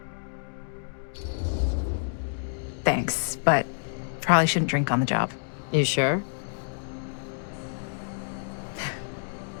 Thanks, but probably shouldn't drink on the job. You sure?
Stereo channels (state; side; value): silent; right; digital silence